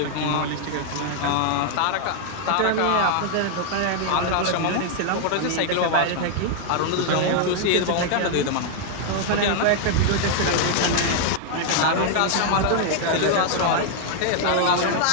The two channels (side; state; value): both; different; correlation 0.00